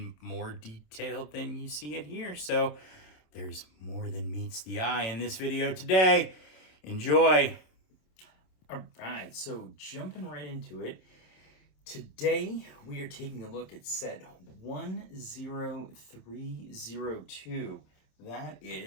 more detail than you see it here. So there's more than meets the eye in this video today. Enjoy. All right, so jumping right into it. Today, we are taking a look at set 10302. That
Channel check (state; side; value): late; right; 27 ms